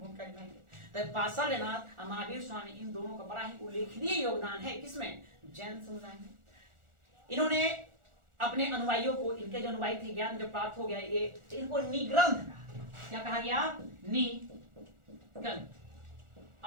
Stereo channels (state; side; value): late; left; 1.4 ms